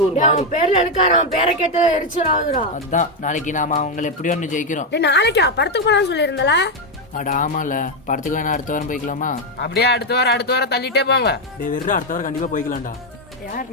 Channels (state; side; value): normal; both; correlation 0.04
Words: ஒரு மாதிரி பேர்ல எடுக்காரு, அவன் பேரை கேட்டா எரிச்சலாகுதுடா. அதான் நாளைக்கு நாம அவங்கள எப்படியோ ஒன்று ஜெயிக்கிறோம். நாளைக்கா படத்துக்கு போலான்னு சொல்லியிருந்தல? அட ஆமால, படத்துக்கு வேணா அடுத்த வாரம் போய்க்கலாமா? அப்படியே அடுத்த வாரம் தள்ளிட்டே போங்க. டேய் வெறும் அடுத்த வாரம் கண்டிப்பா போய்க்கலாம்டா.